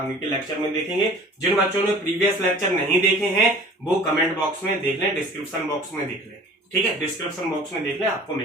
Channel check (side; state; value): both; normal; correlation 0.46